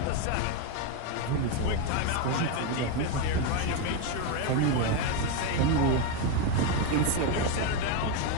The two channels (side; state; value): both; different; correlation 0.03